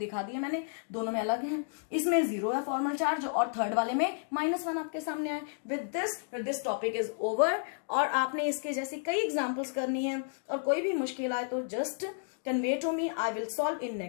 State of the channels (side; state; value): right; silent; digital silence